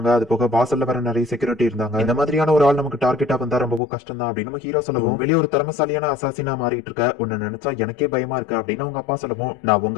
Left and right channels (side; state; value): right; drops out; at 3.8 s